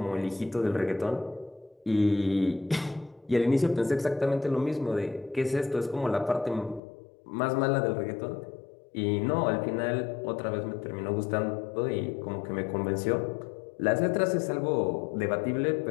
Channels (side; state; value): right; drops out; at 6.8 s